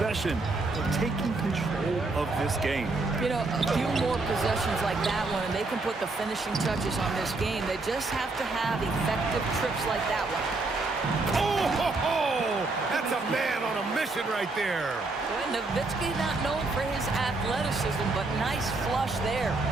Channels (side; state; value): left; quieter; 3.4 dB